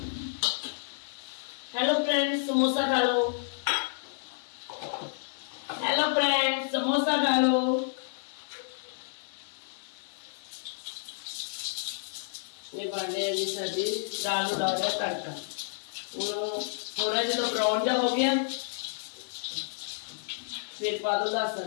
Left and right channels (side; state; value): right; silent; digital silence